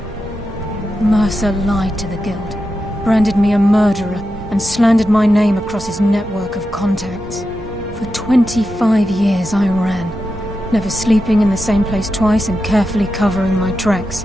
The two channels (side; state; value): both; normal; correlation 0.89